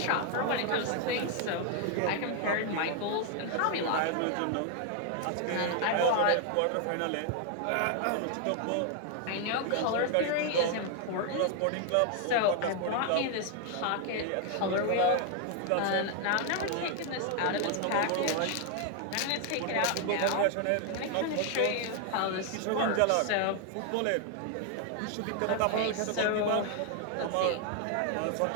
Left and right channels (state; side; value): different; both; correlation 0.00